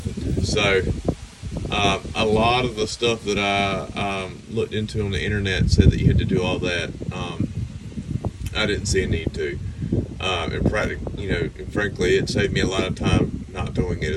So a lot of the stuff that I looked into on the internet said that you had to do all that. I didn't see a need to. And frankly, it saved me a lot of time not doing it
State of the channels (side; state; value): both; identical; correlation 1.00